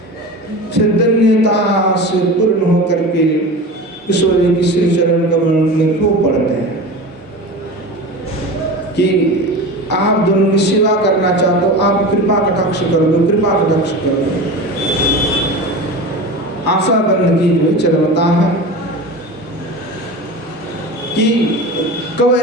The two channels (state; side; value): normal; both; correlation 0.30